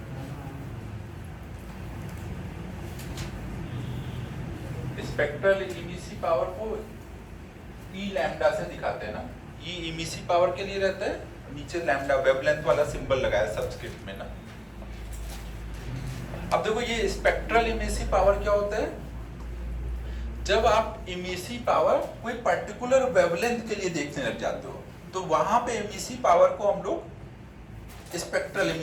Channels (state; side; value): identical; both; correlation 1.00